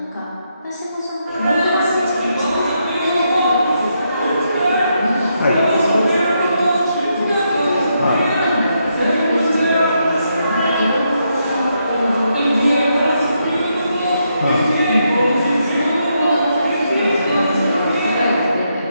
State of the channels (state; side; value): inverted; both; correlation -0.80